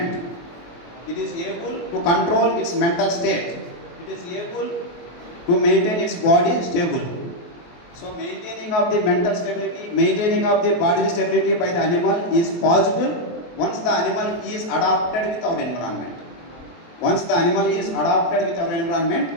it is able to control its mental state. It is able to maintain its body stable. So maintaining of the mental stability, maintaining of the bodily stability by the animal is possible once the animal is adapted with our environment. Once the animal is adapted with our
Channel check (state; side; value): late; right; 23 ms